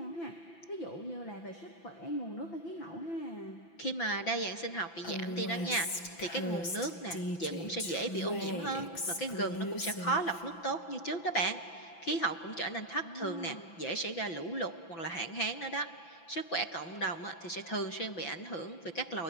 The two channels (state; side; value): late; right; 6.0 ms